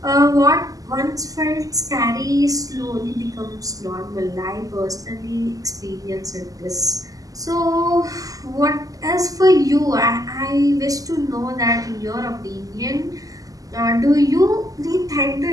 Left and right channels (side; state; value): left; late; 0.17 ms